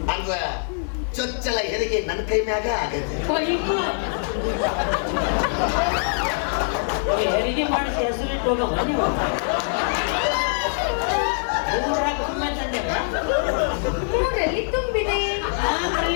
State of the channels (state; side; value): silent; right; digital silence